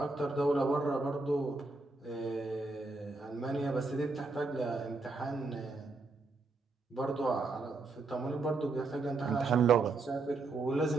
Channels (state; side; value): quieter; left; 3.6 dB